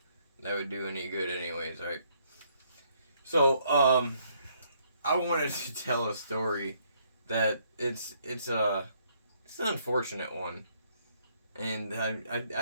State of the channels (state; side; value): inverted; both; correlation -0.69